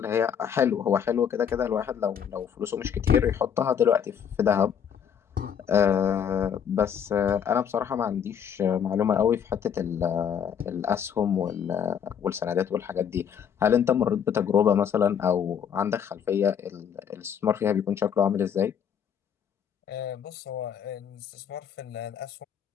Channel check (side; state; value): right; quieter; 8.1 dB